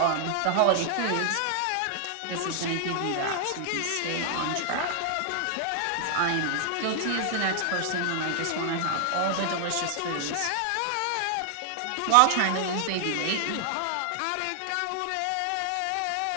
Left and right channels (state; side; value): different; both; correlation 0.00